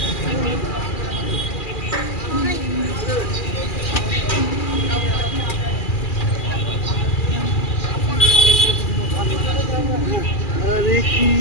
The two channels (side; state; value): right; late; 2.4 ms